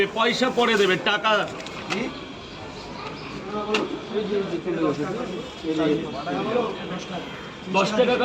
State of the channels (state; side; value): identical; both; correlation 1.00